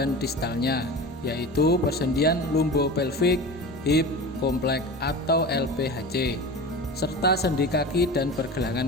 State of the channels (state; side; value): normal; both; correlation 0.32